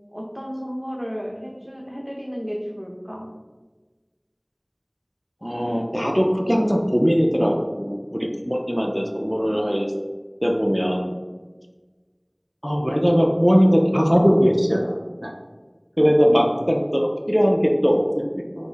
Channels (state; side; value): identical; both; correlation 1.00